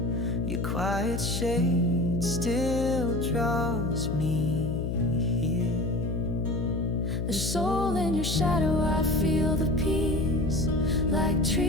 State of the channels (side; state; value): left; noise; hum, 1 dB below the sound